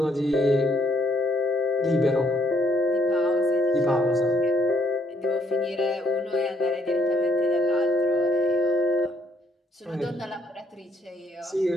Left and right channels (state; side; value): normal; both; correlation 0.68